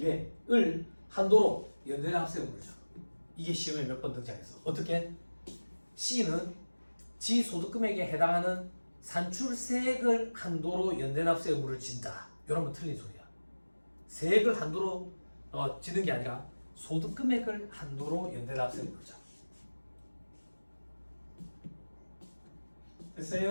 한도로 연대납세 의무를 줘. 이게 시험에 몇 번 등장했어. 어떻게? C는 지 소득금액에 해당하는 산출세액을 한도로 연대납세 의무를 진다. 이러면 틀린 소리야. 세액을 한도로 지는 게 아니라 소득금액을 한도로 연대납세 의무를 줘.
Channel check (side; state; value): both; inverted; correlation -1.00